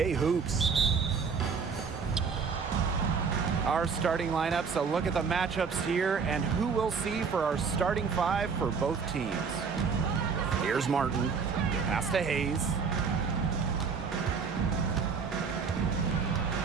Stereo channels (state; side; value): quieter; left; 5.7 dB